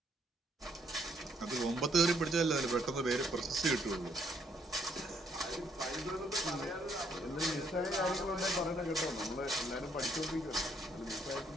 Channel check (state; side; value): normal; both; correlation 0.69